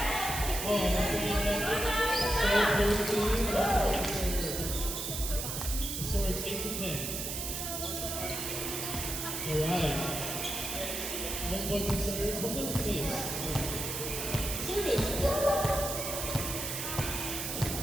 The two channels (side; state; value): right; noise; hiss, 4 dB below the sound